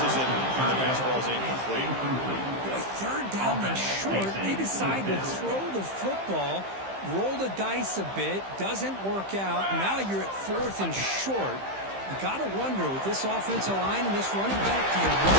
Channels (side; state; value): left; late; 15 ms